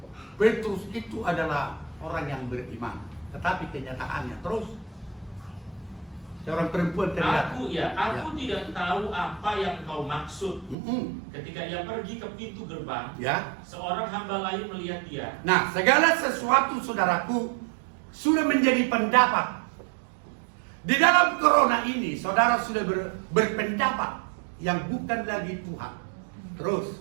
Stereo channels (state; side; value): drops out; left; at 10.8 s